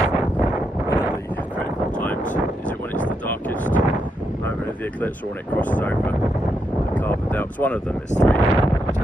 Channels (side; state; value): both; normal; correlation 0.81